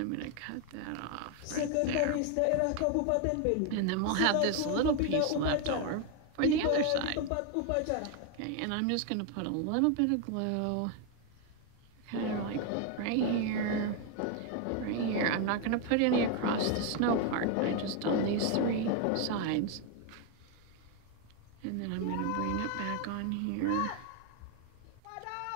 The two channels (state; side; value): different; both; correlation 0.01